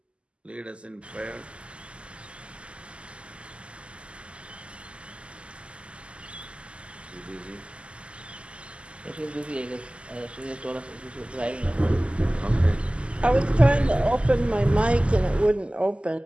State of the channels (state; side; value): late; left; 0.054 ms